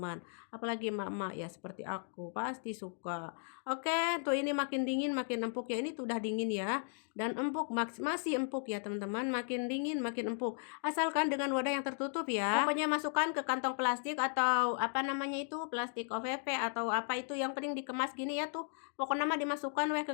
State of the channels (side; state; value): right; silent; 54 dB below the other